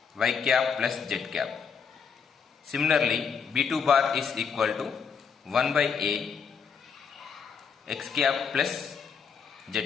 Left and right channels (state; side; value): quieter; right; 6.3 dB